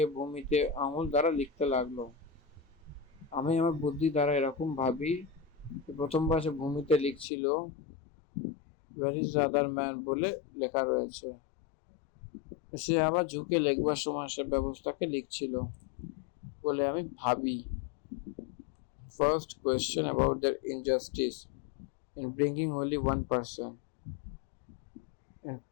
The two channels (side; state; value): right; drops out; at 7.2 s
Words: ভূমিতে আঙুল দ্বারা লিখতে লাগলো। আমি আমার বুদ্ধি দ্বারা এরকম ভাবি, প্রথমবার সে ভূমিতে লিখছিল where is the other man বলে লেখা রয়েছে। সে আবার ঝুঁকে লিখবার সময় সে ব্যবস্থাকে লিখছিল বলে আমি ভাবি। First question about their injustice in bringing only one person and